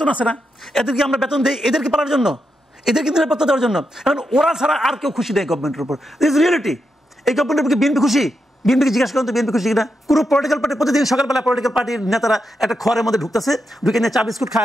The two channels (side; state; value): both; normal; correlation 0.85